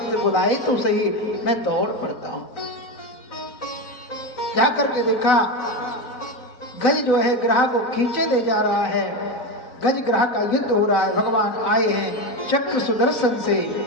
बुलाए तो सही, मैं दौड़ पड़ता हूं। जा करके देखा, गज जो है ग्रह को खींचे ले जा रहा है, गज ग्रह का युद्ध हो रहा है। भगवान आए हैं चक्र सुदर्शन से,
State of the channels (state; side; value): late; right; 4.0 ms